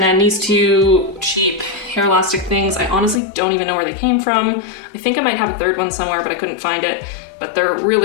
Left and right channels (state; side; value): drops out; right; at 3.2 s